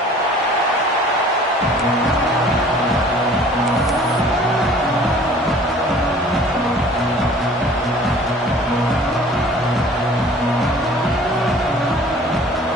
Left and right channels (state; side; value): normal; both; correlation 0.50